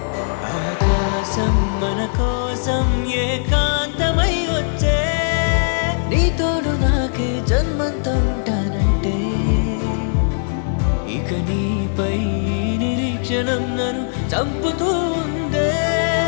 ఆకాశం మన కోసం ఏకాంతమై వచ్చే నీ తోడు నాకే జన్మంతా ఉంటానంటే ఇక నీపై నిరీక్షణం నన్ను చంపుతూ ఉందే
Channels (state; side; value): silent; right; digital silence